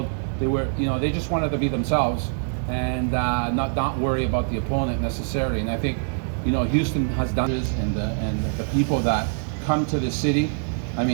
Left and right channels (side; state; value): left; silent; digital silence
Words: They just wanted to be themselves and not worry about the opponent necessarily. And I think Houston has done this, and the people that come to the city. I